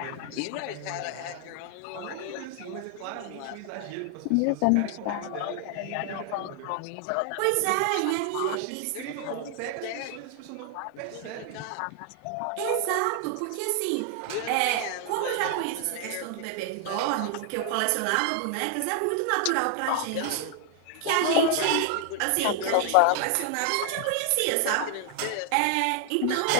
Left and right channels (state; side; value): different; both; correlation 0.00